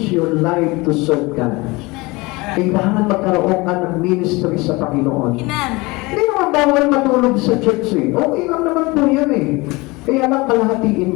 your life to serve God. Kailangan magkaroon ka ng ministry sa Panginoon. Amen. Hindi naman bawal matulog sa church eh. Okay lang naman po yan eh. Kaya lang kalahatiin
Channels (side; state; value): right; quieter; 23.6 dB